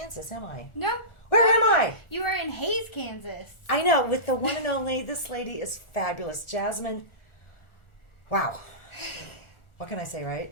am I? No. Where am I? You are in Hays, Kansas. I know, with the one and only, this lady is fabulous. Jasmine, wow. What can I say,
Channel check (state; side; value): late; right; 1.4 ms